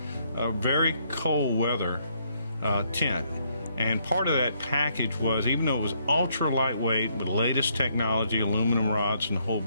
very cold weather tent. And part of that package was, even though it was ultra lightweight with latest technology, aluminum rods and the whole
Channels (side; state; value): both; inverted; correlation -0.71